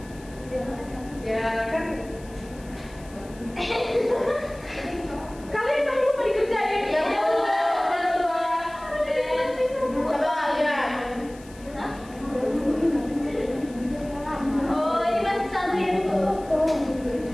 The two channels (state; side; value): noise; left; hiss, 23 dB below the sound